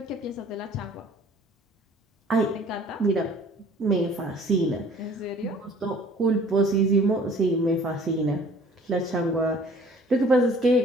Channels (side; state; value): both; normal; correlation 0.52